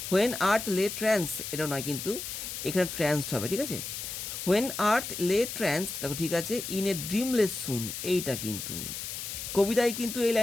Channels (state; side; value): noise; left; hiss, 6 dB below the sound